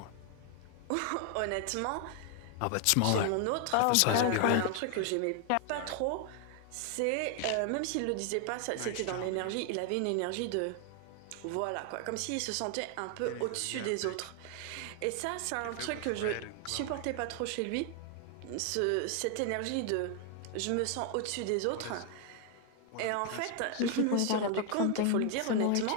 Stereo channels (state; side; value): different; both; correlation 0.00